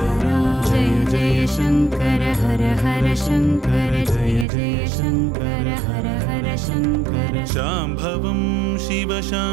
जय जय शंकर हर हर शंकर जय जय शंकर हर हर शंकर शांभवं शिव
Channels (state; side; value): drops out; left; at 4.5 s